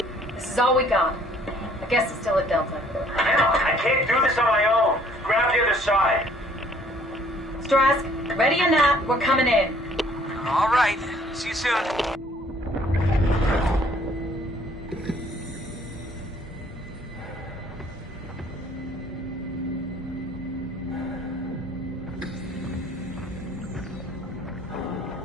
This is all we got. I guess it's still at Delta. Man, I can't do this on my own. Grab the other side. Strask. Ready or not, we're coming in. All right. See you soon.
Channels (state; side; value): normal; both; correlation 0.60